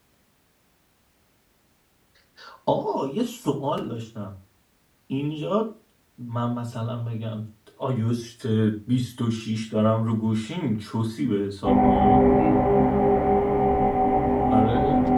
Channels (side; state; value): both; identical; correlation 1.00